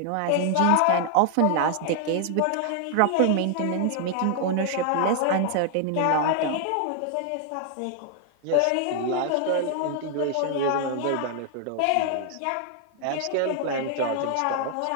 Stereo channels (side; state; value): both; different; correlation 0.00